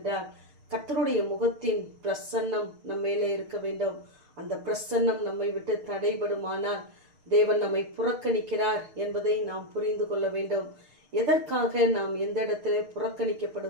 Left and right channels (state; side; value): late; left; 6.6 ms